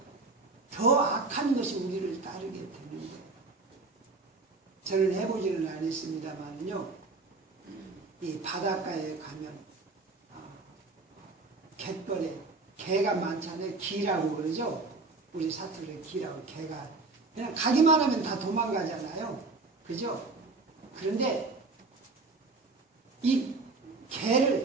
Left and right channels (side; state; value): left; quieter; 3.7 dB